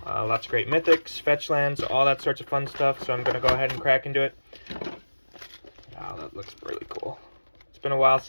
Lots of great mythics, fetch lands, all that sorts of fun stuff. So I'm going to go ahead and crack into it. Wow, that looks really cool. It's been a while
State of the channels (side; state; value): both; inverted; correlation -1.00